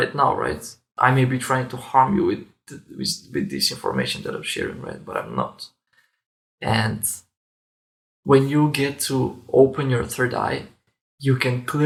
now, right? I may be trying to harm you with this information that I'm sharing, right? But I'm not. And when you get to open your third eye, you can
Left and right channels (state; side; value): identical; both; correlation 1.00